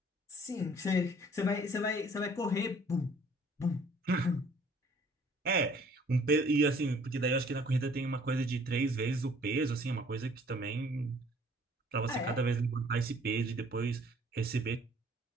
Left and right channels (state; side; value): normal; both; correlation 0.57